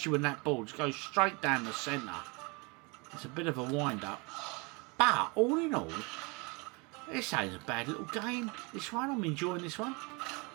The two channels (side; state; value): left; quieter; 28.9 dB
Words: when that ball just goes straight down the centre. It's a bit of a wind-up. But, all in all, this ain't a bad little game. This one, I'm enjoying this one.